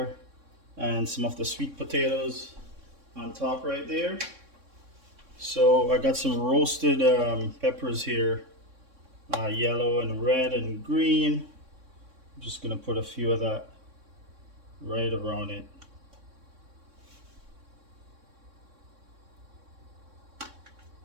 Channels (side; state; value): left; late; 3.6 ms